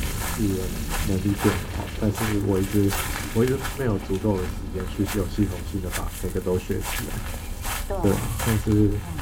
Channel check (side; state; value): both; identical; correlation 1.00